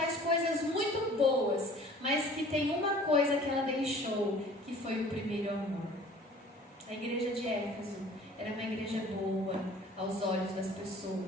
coisas muito boas, mas que tem uma coisa que ela deixou, que foi o primeiro amor. A igreja de Éfeso era uma igreja boa aos olhos das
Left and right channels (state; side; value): normal; both; correlation 0.49